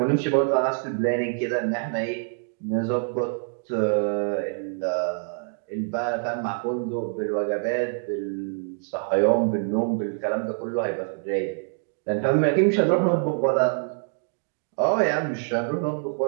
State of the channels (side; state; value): left; silent; digital silence